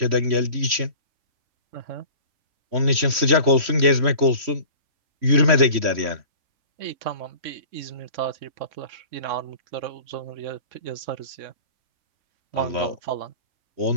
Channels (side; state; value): left; late; 3.1 ms